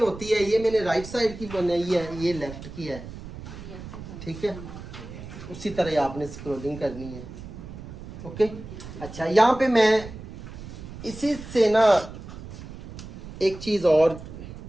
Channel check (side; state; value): right; noise; rumble, 13 dB below the sound